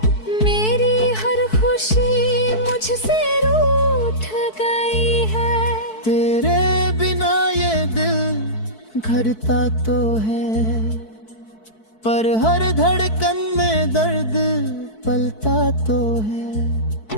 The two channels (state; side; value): late; right; 4.6 ms